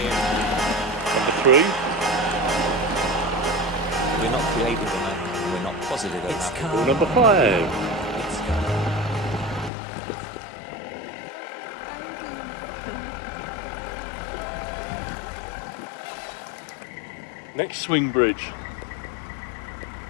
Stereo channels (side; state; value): right; drops out; at 9.7 s